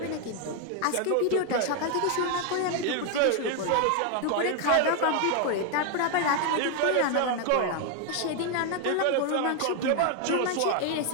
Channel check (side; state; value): both; different; correlation 0.01